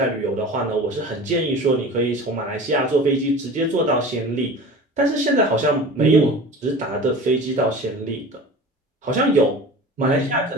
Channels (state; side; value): normal; both; correlation 0.37